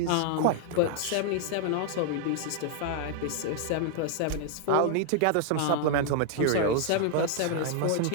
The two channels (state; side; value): different; both; correlation 0.00